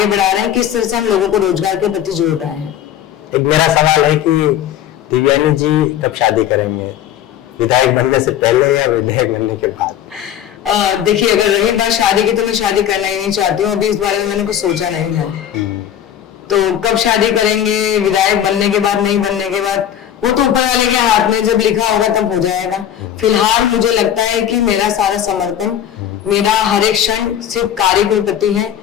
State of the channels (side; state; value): right; quieter; 10.4 dB